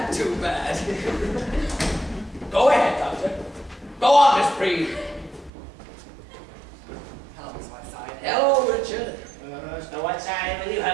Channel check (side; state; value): left; drops out; at 5.5 s